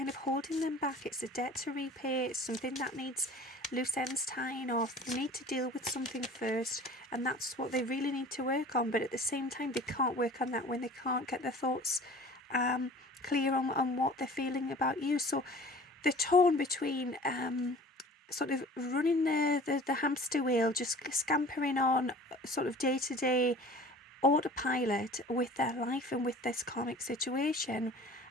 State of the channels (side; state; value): both; normal; correlation 0.44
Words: of holding them back. It's a debt to repay, it's something that needs loose ends tying off. They need to deal with something first, and that's what they really need to work on. But at the same time, they can't work on that when they can't get their thoughts clear on what they're feeling about you. So they're torn between sort of running the hamster wheel, just scampering on sort of day to day autopilot with their life and with this karmic situation,